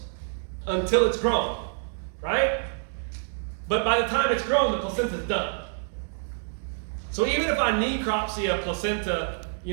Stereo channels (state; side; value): silent; left; 60 dB below the other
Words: until it's grown, right? But by the time it's grown, the placenta is done. So even if I necropsy a placenta,